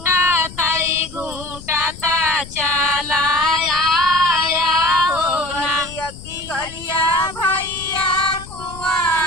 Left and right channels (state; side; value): noise; left; rumble, 16 dB below the sound